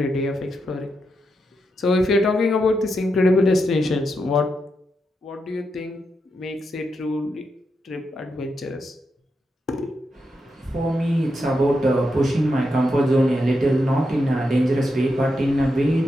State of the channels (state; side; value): normal; both; correlation 0.84